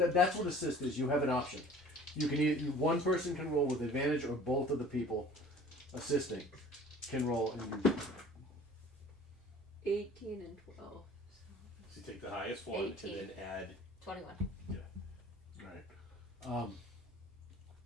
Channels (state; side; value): normal; both; correlation 0.48